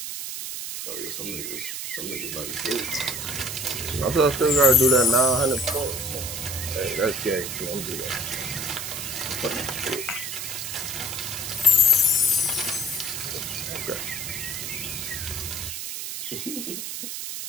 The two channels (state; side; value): noise; right; hiss, 5 dB below the sound